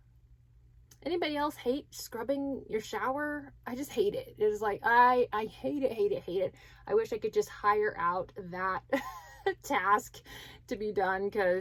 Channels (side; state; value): both; identical; correlation 1.00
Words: Anybody else hate scrubbing your shower? I just hate it. It is like, I hate it. I wish I could just hire out that task to be done,